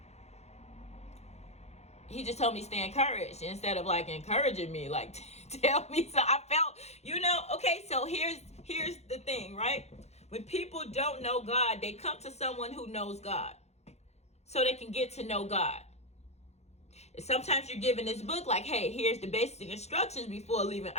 he just told me stay encouraged instead of like encouraging me, like tell me. So I felt, okay, so here's the thing, right? When people don't know God, they come to someone who knows God so they can get to know God. Sometimes you're given this book like, hey, here's the basic instructions before leaving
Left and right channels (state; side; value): late; right; 0.31 ms